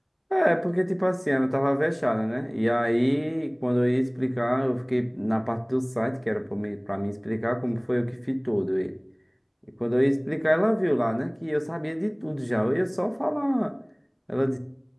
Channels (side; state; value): both; identical; correlation 1.00